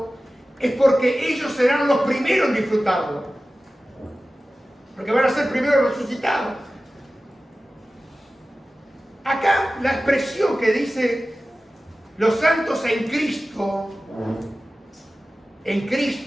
es porque ellos serán los primeros en disfrutarlo. Porque van a ser primeros resucitados. Acá la expresión que dice los santos en Cristo,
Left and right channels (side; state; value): both; normal; correlation 0.96